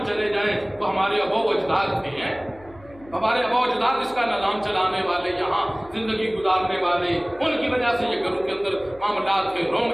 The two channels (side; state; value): left; noise; hum, 23 dB below the sound